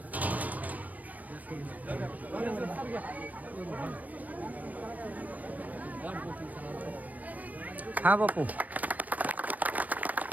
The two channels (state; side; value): late; left; 0.075 ms